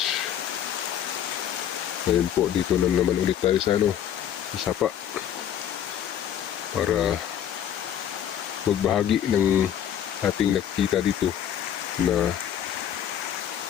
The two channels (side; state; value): right; quieter; 9.9 dB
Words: Ngayon po dito na naman ulit tayo sa sa Sapa para magbahagi ng ating nakikita dito na